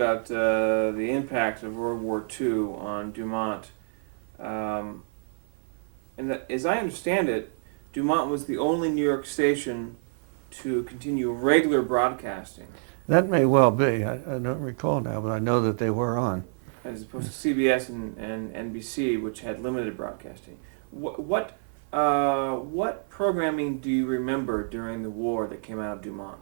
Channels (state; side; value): silent; left; 56 dB below the other